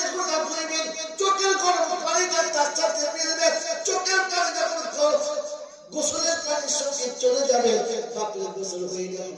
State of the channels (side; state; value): both; identical; correlation 1.00